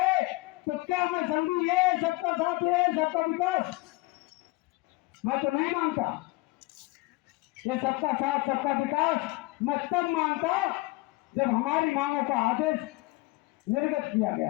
तो क्या मैं समझू ये सबका साथ है, सबका विकास? मैं तो नहीं मानता। ये सबका साथ सबका विकास मैं तब मानता जब हमारी मांगों का आदेश निर्गत किया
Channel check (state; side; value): quieter; right; 22.1 dB